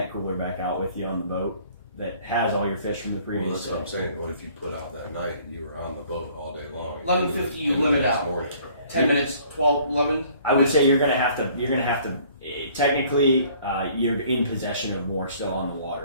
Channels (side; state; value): both; inverted; correlation -0.56